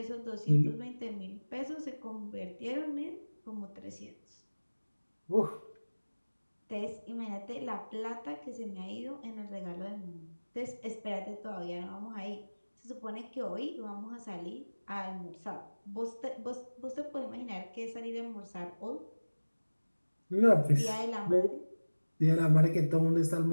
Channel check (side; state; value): both; inverted; correlation -1.00